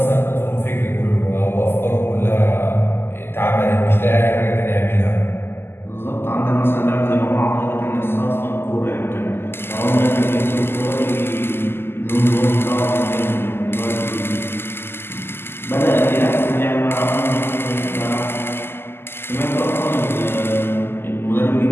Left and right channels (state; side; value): late; right; 0.11 ms